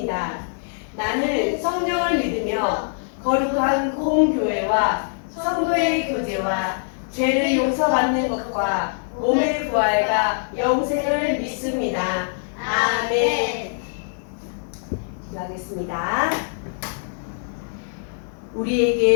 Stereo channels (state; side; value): silent; right; 63 dB below the other